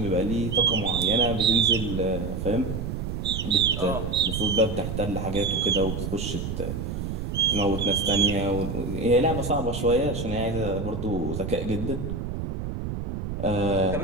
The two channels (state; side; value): noise; right; rumble, 4 dB below the sound